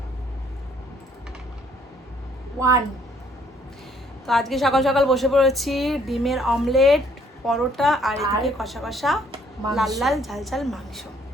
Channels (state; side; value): normal; both; correlation 0.64